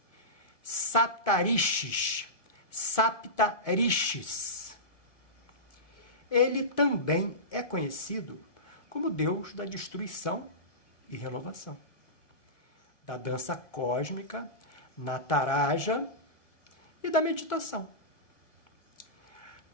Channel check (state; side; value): late; right; 1.8 ms